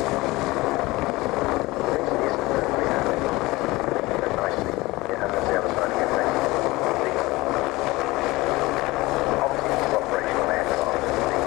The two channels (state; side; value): quieter; right; 20.8 dB